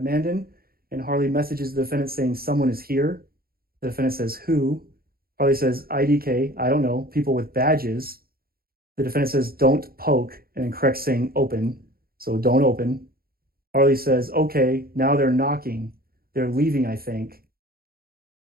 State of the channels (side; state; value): left; late; 0.44 ms